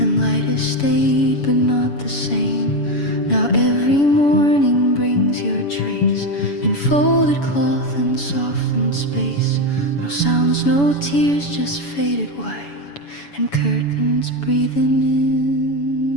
light has stayed but not the same. Now every morning brings your trace in folded cloth and softened space. No sounds, no tears, just faded white and curtains breathing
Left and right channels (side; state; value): right; late; 7.0 ms